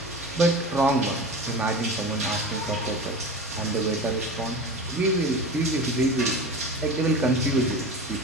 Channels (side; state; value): both; normal; correlation 0.31